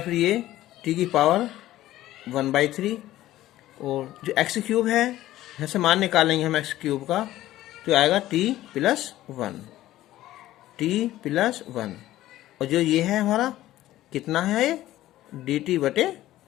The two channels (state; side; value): quieter; right; 14.8 dB